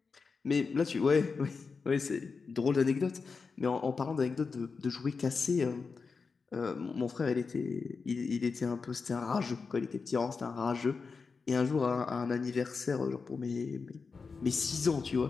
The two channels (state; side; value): quieter; right; 4.9 dB